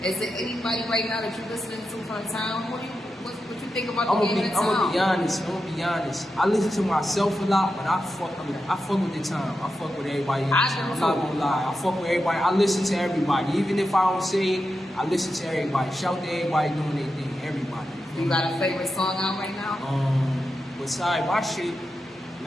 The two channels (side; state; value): both; normal; correlation 0.89